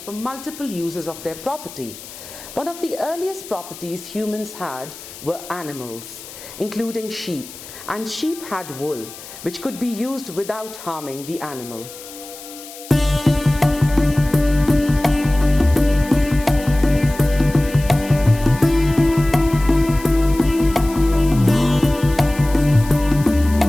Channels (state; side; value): noise; left; hiss, 16 dB below the sound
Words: for multiple uses of their property. One of the earliest properties humans had were animals, including sheep, and sheep had wool, which could be used without harming the animal.